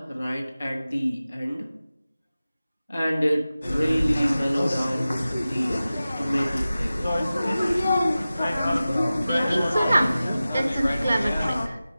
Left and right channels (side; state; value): both; inverted; correlation -0.95